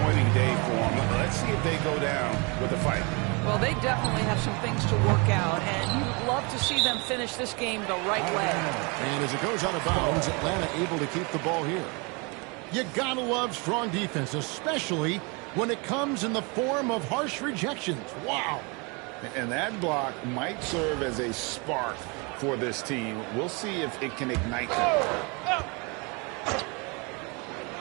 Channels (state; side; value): quieter; left; 30.5 dB